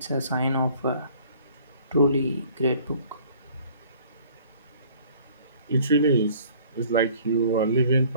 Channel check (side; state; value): both; inverted; correlation -0.54